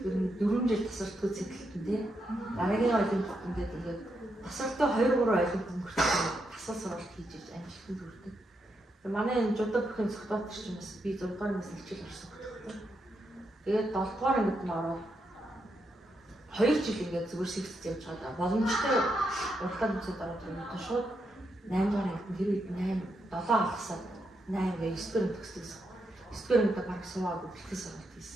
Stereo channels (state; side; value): normal; both; correlation 0.82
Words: ер нь 4 жил тасардгүй цэглэлтэн тий. Дараагийн олимпиад ингээд тасарч тасралтаа 2-3 айлын өнгөрсөн тасал сургалт хийж иж амжилтанд хүрдэг. Манай энэ жудаа бүхэн цогтоод ч юм бас би 6 дугаар ангиас хичээл орсон хөтөлбөр. Тэгээд 7 дугаар ангид нь ороод 2 жил ингээд зүгээр сэгцэж явж байгаа. Боломжтой уртаа нүцэд ороод ирсэн шууд 8 дугаар ангид нь тэр үед 7 алгасаад 8 гээ 9 дугаар төгсдөгсөн. 9 дугаар ангид баг суугаад бэлтгэл сургалт